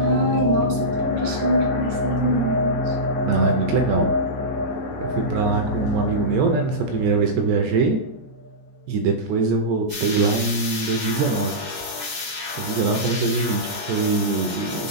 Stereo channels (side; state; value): left; late; 14 ms